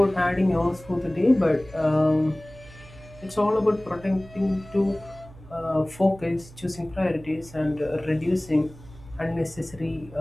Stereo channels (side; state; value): right; noise; hum, 20 dB below the sound